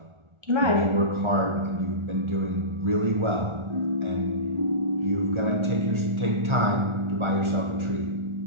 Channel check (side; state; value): left; late; 1.4 ms